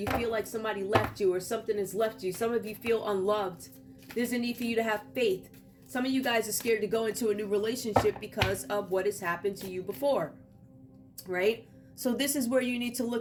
feel like somebody left you or something has left you. Some of you feel unloved. There's a need for you to have faith. Some of you guys are scared to go into a new relationship because of what has happened to you before, right? So this is where you need to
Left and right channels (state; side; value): identical; both; correlation 1.00